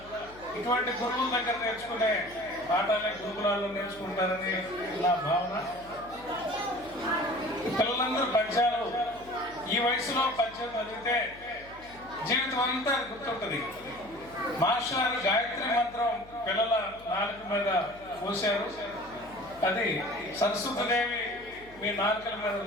ఇటువంటి గురువుల దగ్గర నేర్చుకునే పాఠాలే గురుకులాల్లో నేర్చుకుంటారని నా భావన. పిల్లలందరూ పద్యాలు ఈ వయసులో పద్యం చదివితే జీవితం అంతా గుర్తుంటుంది. మాస్టర్ గాయత్రి మంత్రం పిల్లల నాలుక మీద పోశారు. అది సరస్వతీదేవి మీ నాలుకల మీద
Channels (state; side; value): noise; left; hum, 21 dB below the sound